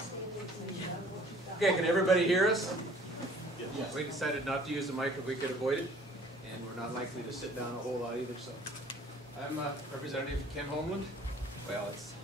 Okay, can everybody hear us? Yes. We decided not to use the mic if we could avoid it, and we're not likely to sit down a whole lot either, so. I'm Representative Ken Homeland. Well, it's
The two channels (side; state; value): both; normal; correlation 0.53